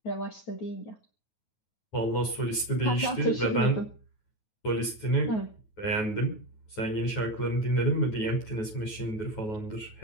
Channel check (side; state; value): right; late; 9.3 ms